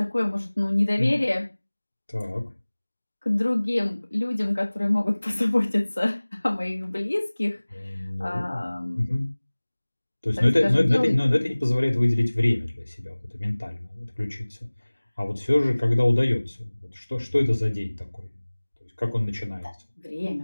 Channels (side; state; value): both; inverted; correlation -1.00